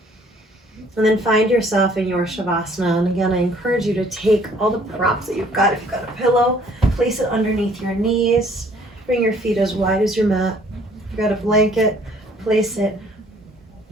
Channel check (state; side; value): normal; both; correlation 0.59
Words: And then find yourself in your Shavasana. And again, I encourage you to take all the props that you've got. If you've got a pillow, place it underneath your knees. Bring your feet as wide as your mat. If you've got a blanket, place it